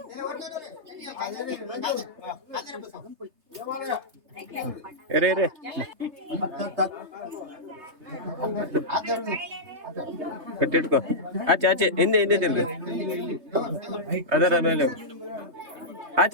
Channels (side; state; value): left; late; 3.3 ms